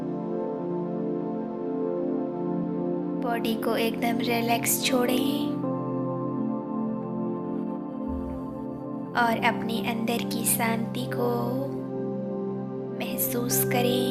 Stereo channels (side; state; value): both; identical; correlation 1.00